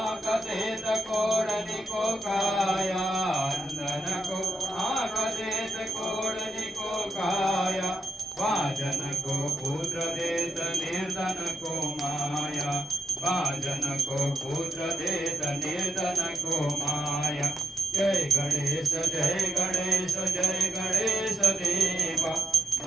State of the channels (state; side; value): normal; both; correlation 0.86